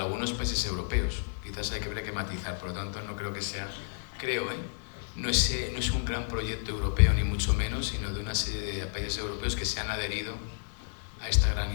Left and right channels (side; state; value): right; silent; digital silence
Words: países europeos. Quizás hay que matizar, por lo tanto no creo que sea, no es un gran proyecto europeo ni mucho menos, sino de una serie de países europeos que se han adherido a esta gran